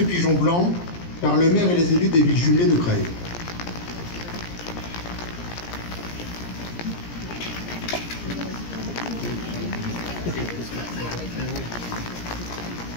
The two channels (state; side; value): late; right; 17 ms